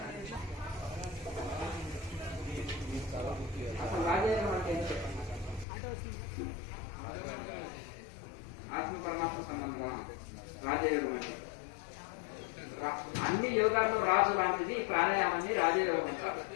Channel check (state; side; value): drops out; right; at 5.7 s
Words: అసలు రాజేంద్ర అంటే అన్ని యోగాల్లో రాజు లాంటిది ప్రాణాయామాన్ని రాజయోగం అంటారు.